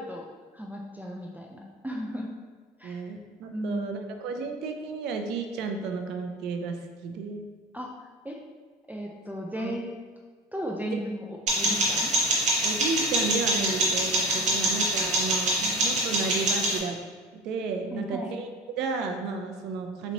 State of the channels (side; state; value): both; normal; correlation 0.32